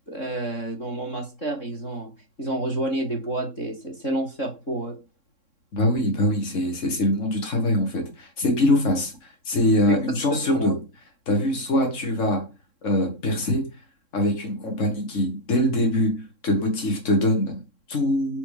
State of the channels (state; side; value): late; right; 3.6 ms